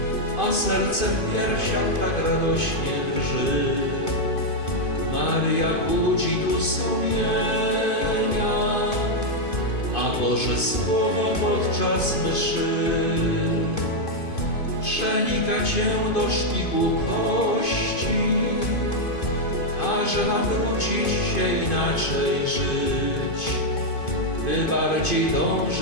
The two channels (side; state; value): right; late; 2.5 ms